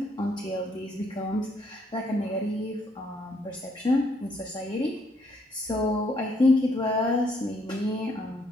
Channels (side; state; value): both; normal; correlation 0.70